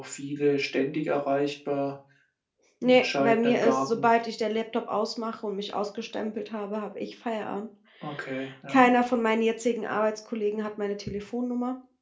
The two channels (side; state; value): both; identical; correlation 1.00